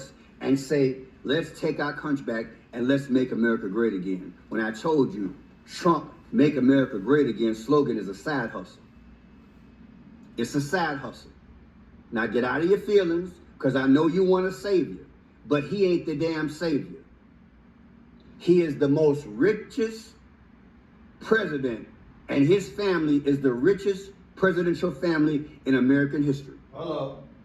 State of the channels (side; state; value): both; identical; correlation 1.00